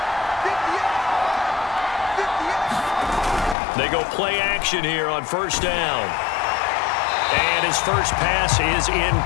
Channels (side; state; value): right; drops out; at 3.6 s